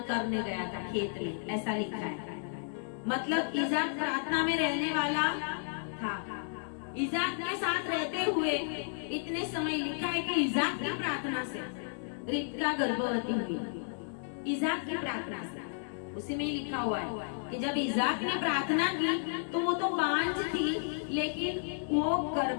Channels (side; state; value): right; silent; digital silence